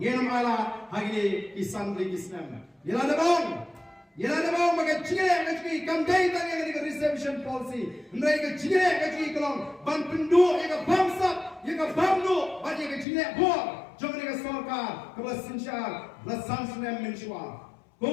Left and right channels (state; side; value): drops out; right; at 13.1 s